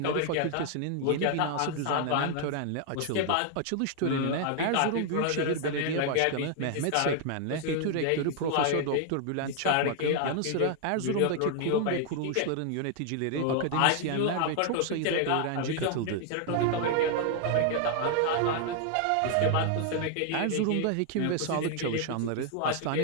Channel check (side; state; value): both; different; correlation 0.00